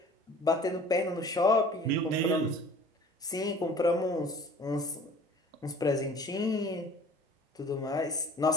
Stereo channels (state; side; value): normal; both; correlation 0.48